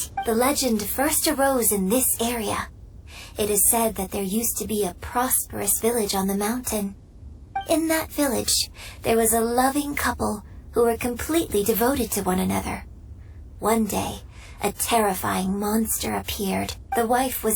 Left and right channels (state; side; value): identical; both; correlation 1.00